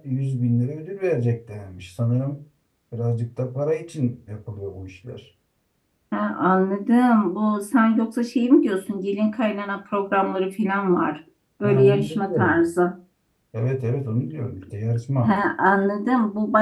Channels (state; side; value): identical; both; correlation 1.00